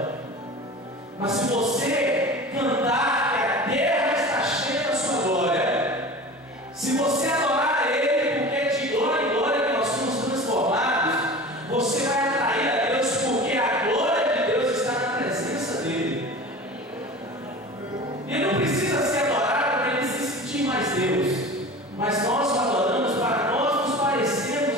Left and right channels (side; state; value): both; normal; correlation 0.36